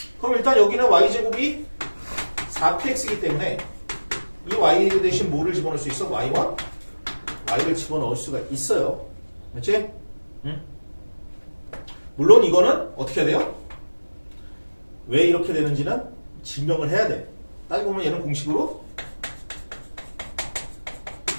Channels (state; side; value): inverted; both; correlation -1.00